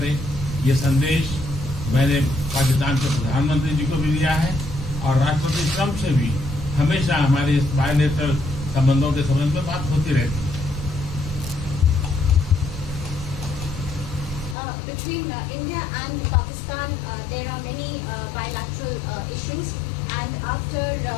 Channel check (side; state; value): right; drops out; at 14.6 s